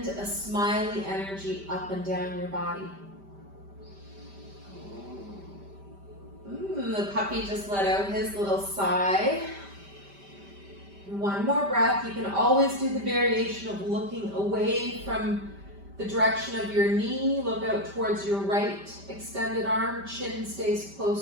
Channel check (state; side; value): late; left; 5.1 ms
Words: a smiley energy up and down your body. The puppy just let out his little sigh. One more breath. You can always do the variation of looking away from the direction of your knee. Look out towards your right extended arm. Chin stays